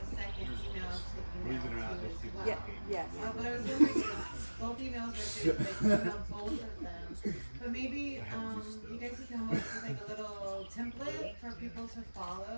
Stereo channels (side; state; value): both; inverted; correlation -1.00